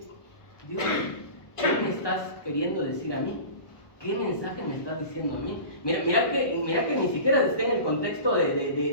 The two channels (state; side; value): late; right; 1.2 ms